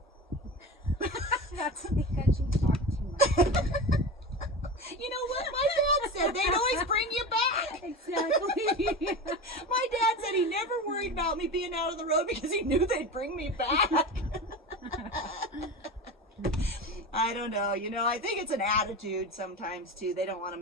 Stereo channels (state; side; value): normal; both; correlation 0.28